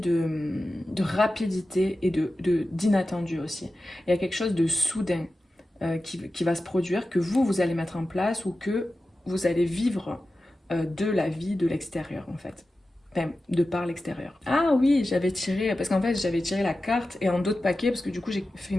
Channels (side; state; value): both; normal; correlation 0.94